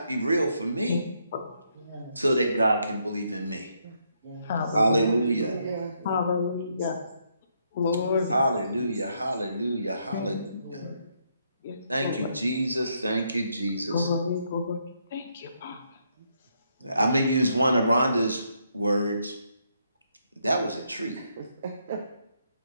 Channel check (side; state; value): both; inverted; correlation -0.75